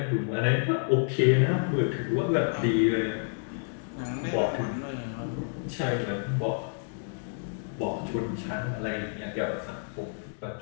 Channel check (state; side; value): silent; right; digital silence